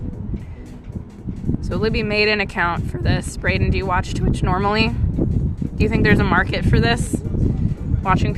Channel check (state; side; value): identical; both; correlation 1.00